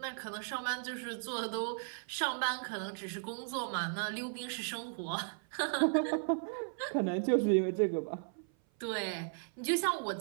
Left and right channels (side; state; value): left; silent; 54 dB below the other